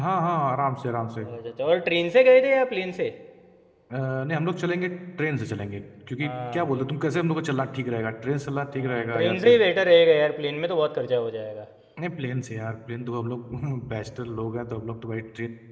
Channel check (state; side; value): identical; both; correlation 1.00